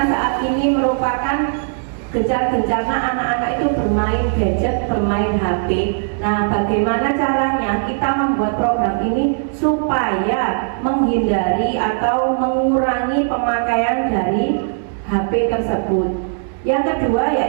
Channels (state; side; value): silent; left; digital silence